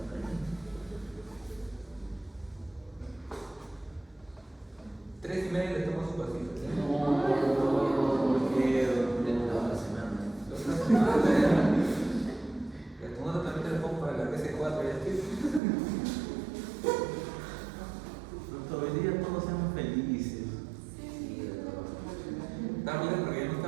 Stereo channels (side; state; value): left; drops out; at 15.6 s